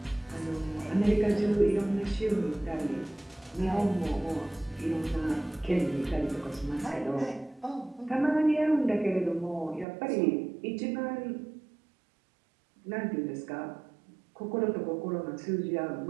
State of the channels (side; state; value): left; drops out; at 9.9 s